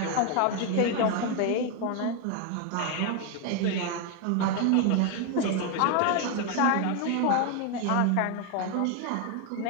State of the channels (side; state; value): both; different; correlation 0.01